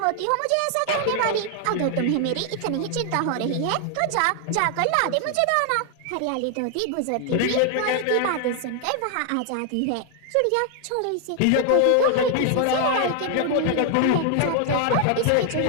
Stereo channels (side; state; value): both; different; correlation 0.00